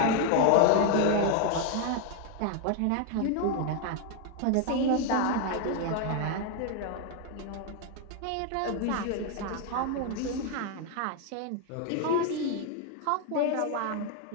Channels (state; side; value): different; both; correlation 0.01